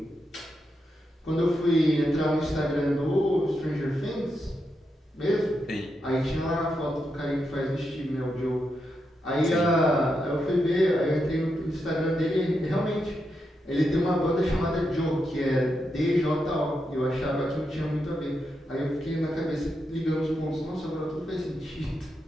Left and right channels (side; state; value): both; normal; correlation 0.84